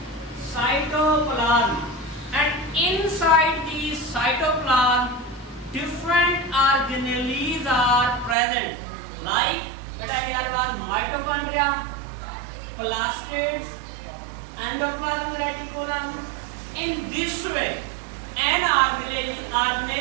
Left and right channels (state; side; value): drops out; left; at 8.3 s